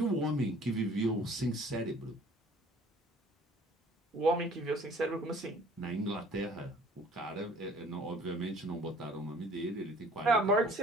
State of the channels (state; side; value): normal; both; correlation 0.52